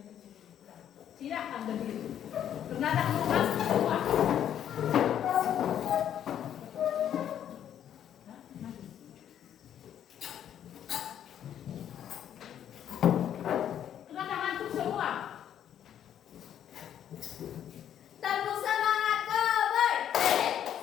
Silakan berdiri. Karena tak mau masuk semua. Karena ngantuk semua. Tepuk semangat Koboy.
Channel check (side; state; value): right; quieter; 10.0 dB